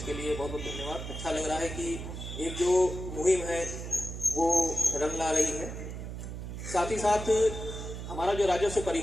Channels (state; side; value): noise; right; hum, 7 dB below the sound